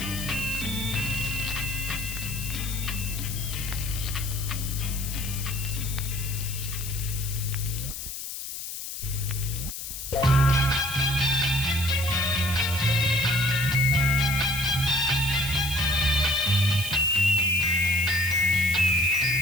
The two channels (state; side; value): noise; left; hiss, 8 dB below the sound